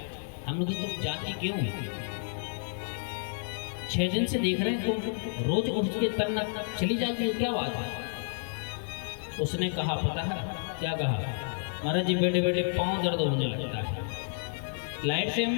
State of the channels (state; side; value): silent; right; digital silence